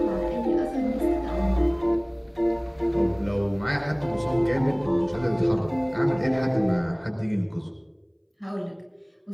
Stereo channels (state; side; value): identical; both; correlation 1.00